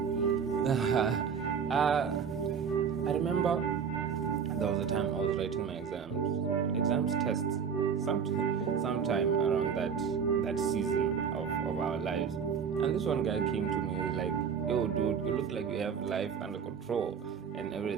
I remember there was a time I was writing my tests, sometime around that that season of our lives. And this one guy came to me and was like, yo dude, you look like you have life under control and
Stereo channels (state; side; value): quieter; left; 6.8 dB